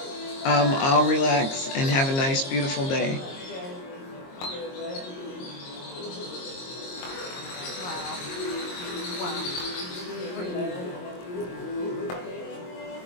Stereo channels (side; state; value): right; late; 22 ms